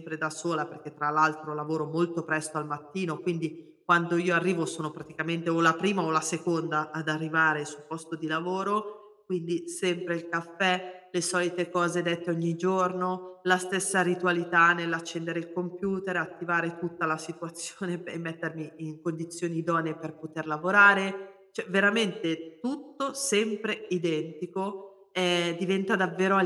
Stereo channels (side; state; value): both; identical; correlation 1.00